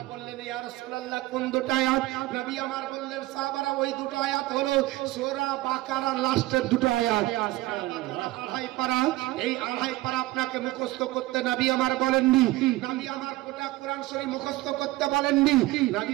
বললেন ইয়া রাসূলুল্লাহ কোন দুটো আয়াত? নবী আমার বললেন সাহাবারা ওই দুটো আয়াত হলো সূরা বাকারার লাস্টের দুটো আয়াত। আড়াই পারা, এই আড়াই পারা আপনাকে মুখস্থ করতে নবী আমার বলেননি। নবী আমার গোটা কোরআন শরীফ মুখস্থ করতে বলেননি।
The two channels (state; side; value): quieter; left; 18.6 dB